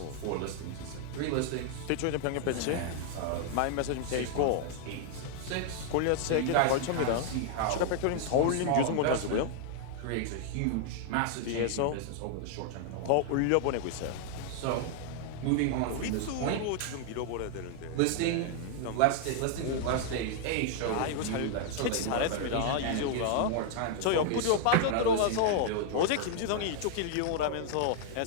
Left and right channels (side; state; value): both; different; correlation 0.00